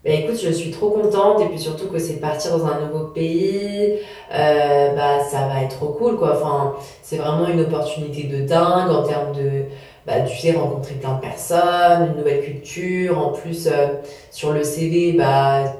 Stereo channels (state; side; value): identical; both; correlation 1.00